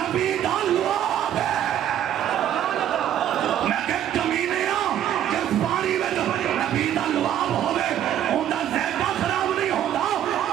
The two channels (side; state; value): left; quieter; 10.8 dB